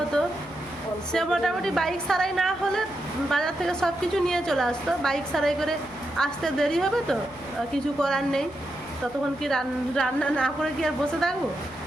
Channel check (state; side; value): noise; left; hum, 22 dB below the sound